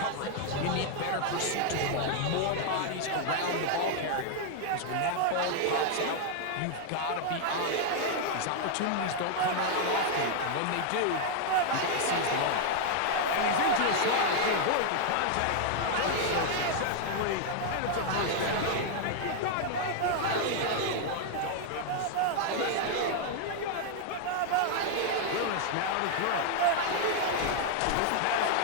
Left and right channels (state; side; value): different; both; correlation 0.00